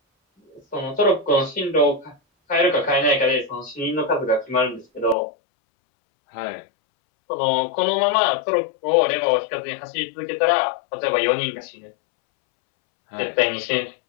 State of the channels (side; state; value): right; drops out; at 5.2 s